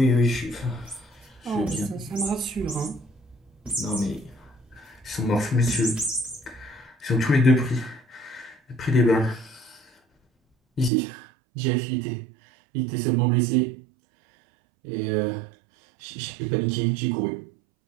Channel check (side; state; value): left; drops out; at 10.9 s